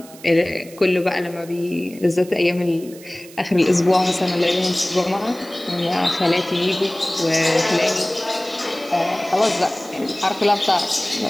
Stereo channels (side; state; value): right; noise; hiss, 20 dB below the sound